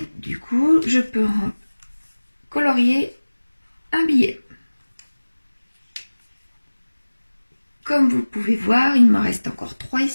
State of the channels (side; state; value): both; inverted; correlation -1.00